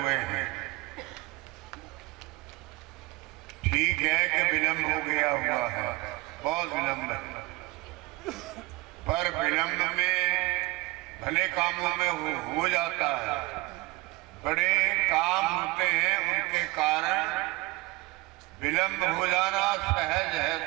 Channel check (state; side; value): quieter; left; 22.0 dB